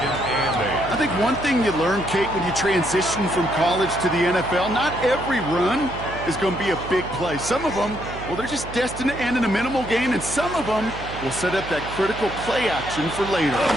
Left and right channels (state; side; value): noise; right; hum, 12 dB below the sound